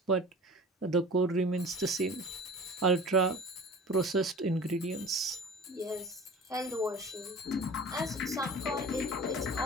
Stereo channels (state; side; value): normal; both; correlation 0.40